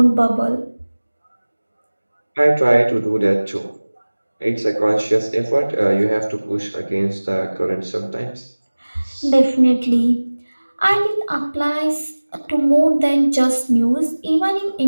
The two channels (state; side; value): inverted; both; correlation -1.00